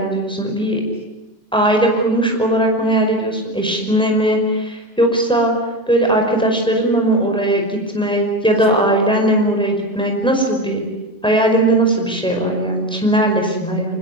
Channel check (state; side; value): normal; both; correlation 0.22